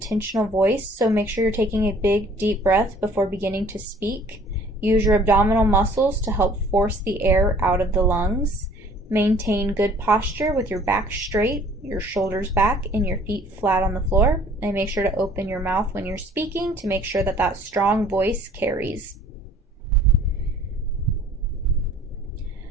voice. So make sure you're taking a big, deep breath before beginning to speak. Use your abdominal muscles to help force the air out of the lungs. Maintain good posture with your back straight, your shoulders back, and your feet flat on the floor. And make sure to open your mouth when you're speaking to make sure that strong voice carries.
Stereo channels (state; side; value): normal; both; correlation 0.54